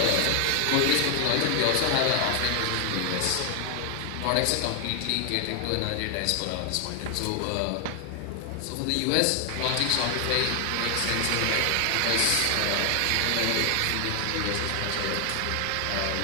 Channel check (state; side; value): different; both; correlation 0.00